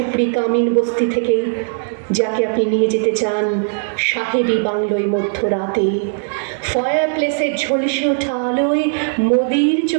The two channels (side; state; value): left; silent; digital silence